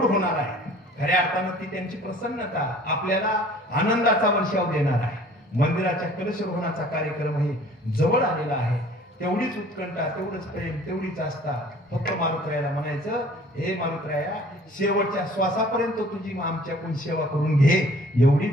होणार आहे खऱ्या अर्थानं ती त्यांची प्रसन्नता आपल्याला आनंदाचा वर्षाव देणार आहे मंदिराच्या कलशरोहणाचा कार्यक्रमही जवळ आलेला आहे तेवढीच उत्कंठा तेवढंच प्रेम तेवढीच आस्था फक्त मारुतरायाला म्हणायचं हे मारुतराया शेवटच्या श्वासापर्यंत तुझी आमच्याकडून सेवा करून घे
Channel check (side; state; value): both; normal; correlation 0.51